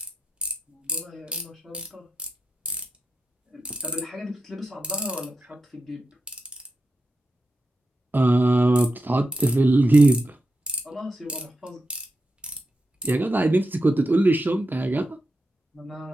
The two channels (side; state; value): both; normal; correlation 0.88